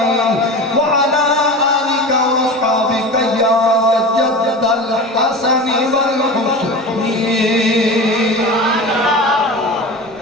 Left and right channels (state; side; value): normal; both; correlation 0.31